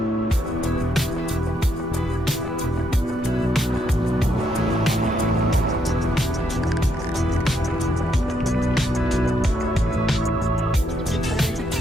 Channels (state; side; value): normal; both; correlation 0.76